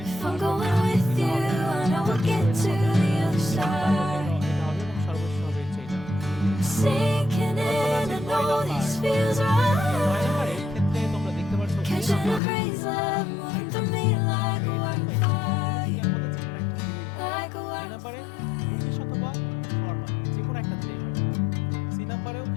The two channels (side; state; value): right; drops out; at 12.4 s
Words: If I'm going with you, I know we'll get to the other side. এটা হবে এবং সর্বশেষ হবে হচ্ছে এটা। Sinking in, I know this feels 9 right. নাম্বারের ক্ষেত্রে তোমরা দেখতে পাচ্ছ Catching a breeze, love moving through me like a wildfire. এর মধ্যে যে কোনো একটা দিলেই হবে। Like a এই নাম্বারে wildfire. ইংলিশ অথবা ফরমাল যে কোনো একটা দিলেই হবে। সি নাম্বারেও